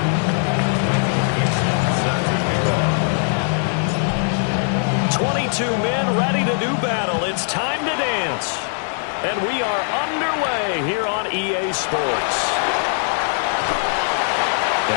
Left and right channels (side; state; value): right; silent; 60 dB below the other